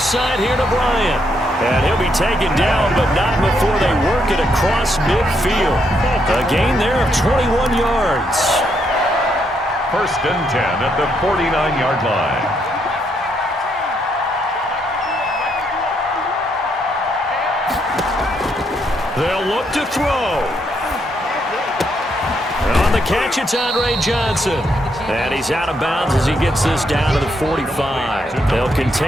side here to Bryant. And he'll be taken down, but not before they work it across midfield. A gain there of 21 yards. 1st and 10 at the 49-yard line. They'll look to throw. On the catch, it's Andre Johnson. And he's out of bounds as he gets this down to the 45. They'll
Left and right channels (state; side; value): normal; both; correlation 0.76